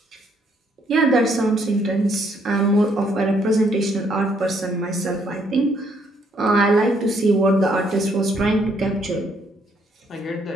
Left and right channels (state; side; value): normal; both; correlation 0.69